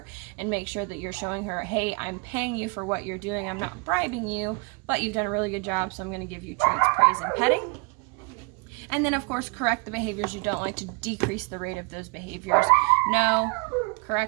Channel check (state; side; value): quieter; left; 31.6 dB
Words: and make sure that you're showing her, hey, I'm paying you for what you're doing. I'm not bribing you, but you've done a really good job, so I'm going to give you treats, praise, and petting. And then, of course, correct the behaviors you don't like to decrease the rate of those behaviors. No,